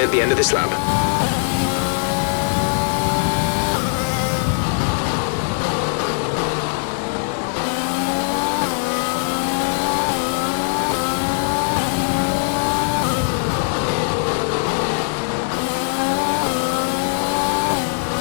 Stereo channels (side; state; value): right; silent; 62 dB below the other